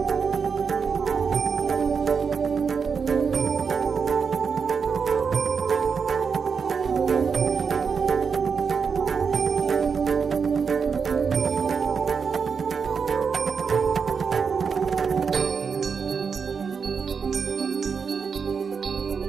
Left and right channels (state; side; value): quieter; left; 5.8 dB